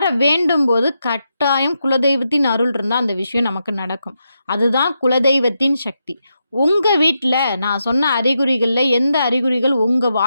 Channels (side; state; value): both; inverted; correlation -0.85